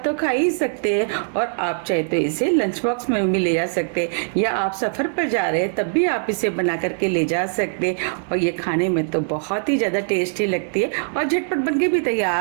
तो खा ही सकते हैं और आप चाहे तो इसे लंच बॉक्स में भी ले जा सकते हैं या आप सफर पर जा रहे हैं तब भी आप इसे बना करके ले जा सकते हैं और ये खाने में तो बहुत ही ज़्यादा टेस्टी लगती है और झटपट बन के भी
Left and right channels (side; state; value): left; silent; digital silence